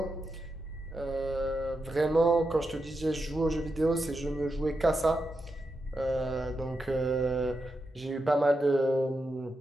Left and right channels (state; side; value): normal; both; correlation 0.87